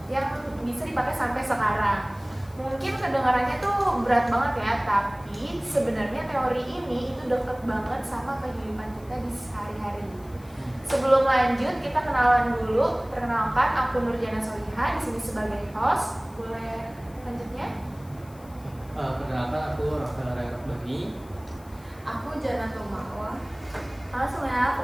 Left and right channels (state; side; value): noise; left; hiss, 26 dB below the sound